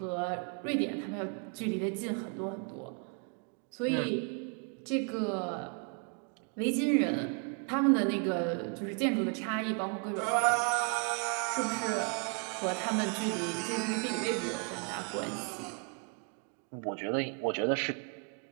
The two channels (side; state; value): left; quieter; 38.4 dB